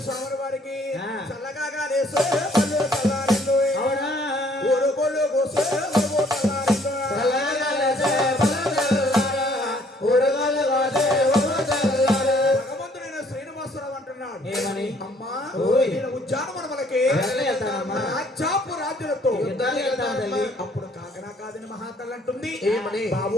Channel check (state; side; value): normal; both; correlation 0.62